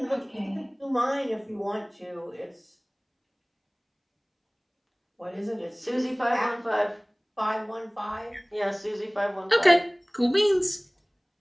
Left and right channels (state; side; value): identical; both; correlation 1.00